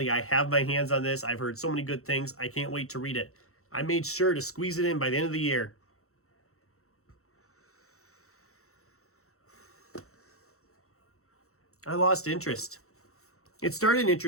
I have my hands on this. I've heard so many good things. I can't wait to read it. I made sure to squeeze it in by the end of the year. I lost interest. It started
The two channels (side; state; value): right; late; 0.63 ms